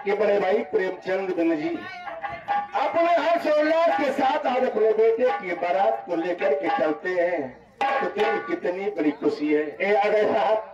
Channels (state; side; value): identical; both; correlation 1.00